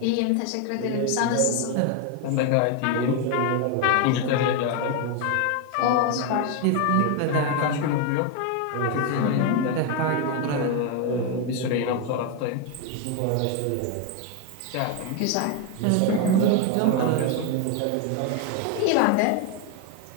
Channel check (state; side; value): different; both; correlation 0.01